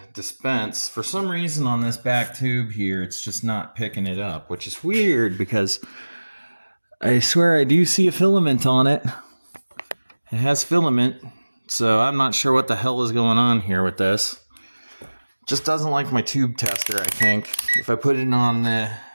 dispense, for some reason on this back tube here, it's just not picking it up, which is weird because I swear I do see a filament on it. It has filament, so I'm not sure what the hell is going on here with this. Just doesn't like my tube tester, I think. If I put it on the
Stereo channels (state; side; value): inverted; both; correlation -1.00